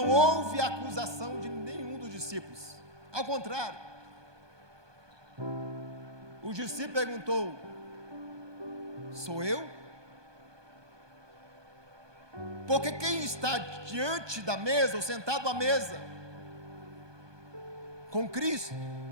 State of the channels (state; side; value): late; left; 1.2 ms